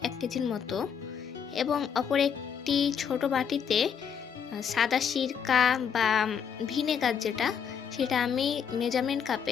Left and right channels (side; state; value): right; quieter; 7.4 dB